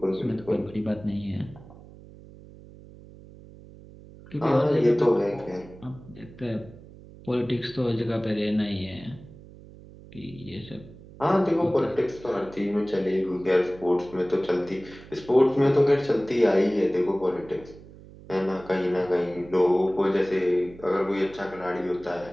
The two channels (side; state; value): right; noise; hum, 19 dB below the sound